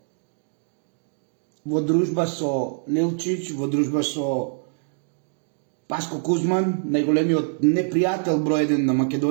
во дружба со Нелчич, во дружба со Паско Кузман, најголемиот непријател број 1 на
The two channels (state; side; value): silent; left; 62 dB below the other